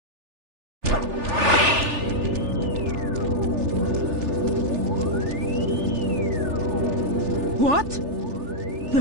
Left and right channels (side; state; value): left; late; 3.4 ms